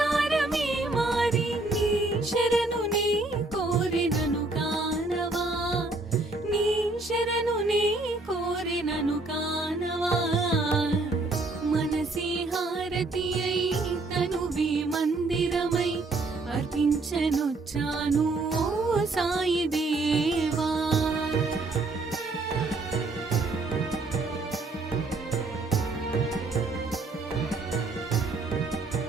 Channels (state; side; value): quieter; left; 3.2 dB